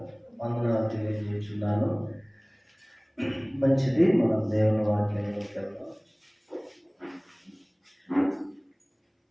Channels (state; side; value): identical; both; correlation 1.00